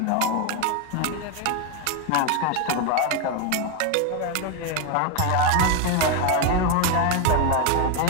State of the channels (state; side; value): different; both; correlation 0.02